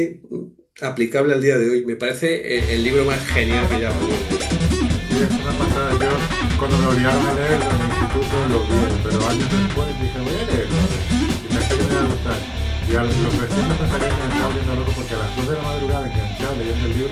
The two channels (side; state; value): both; identical; correlation 1.00